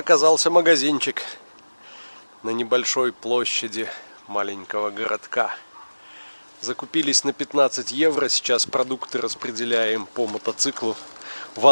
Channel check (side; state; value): both; inverted; correlation -1.00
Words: магазинчик на небольшой площади маленького городка. Закупились на 15 евро. Сейчас продукты распределяем по мотоциклу.